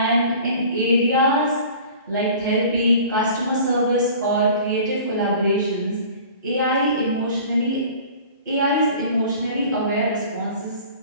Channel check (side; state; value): both; inverted; correlation -0.44